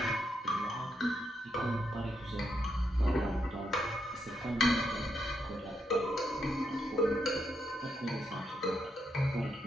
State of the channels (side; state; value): both; normal; correlation 0.80